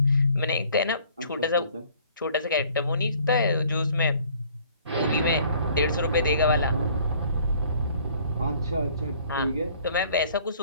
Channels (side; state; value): both; inverted; correlation -0.57